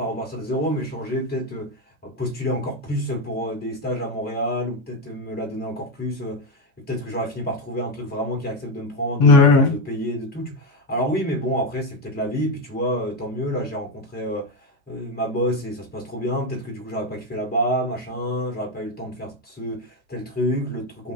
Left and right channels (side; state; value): both; normal; correlation 0.11